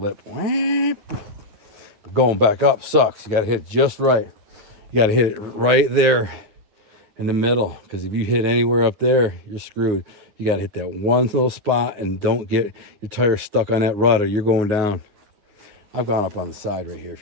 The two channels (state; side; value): late; left; 9.6 ms